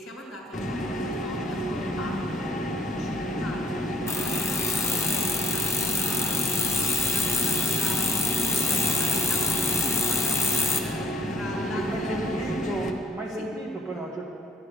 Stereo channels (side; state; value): both; normal; correlation 0.60